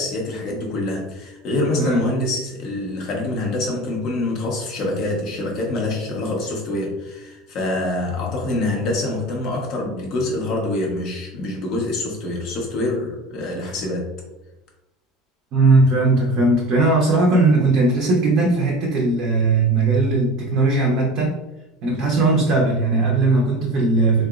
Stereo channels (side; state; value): both; normal; correlation 0.37